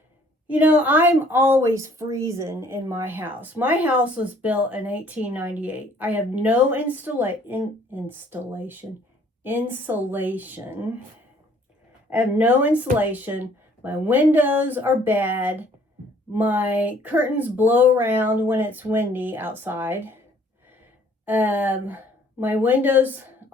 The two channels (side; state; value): both; normal; correlation 0.59